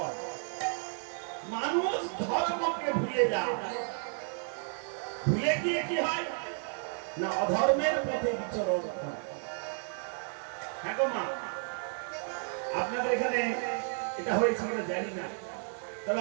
মানুষ ধর্মকে ভুলে যায় ভুলে গিয়ে কি হয় না অধর্মের পথে বিচরণ করে হ্যাঁ গো মা আপনাদের এখানে এটা হয়েছে কিনা জানি না তবে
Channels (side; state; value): left; silent; 56 dB below the other